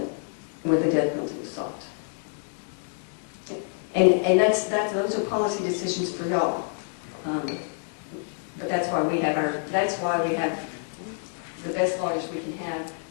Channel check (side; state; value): right; silent; 60 dB below the other